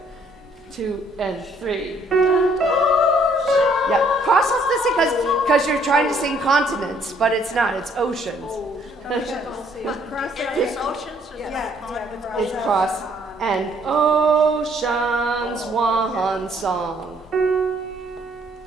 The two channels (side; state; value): both; normal; correlation 0.65